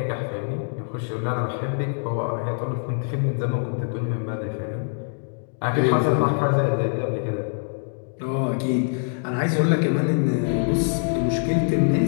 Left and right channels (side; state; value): right; silent; digital silence